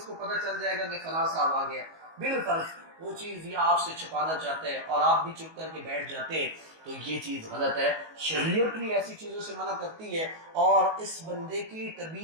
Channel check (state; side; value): late; left; 19 ms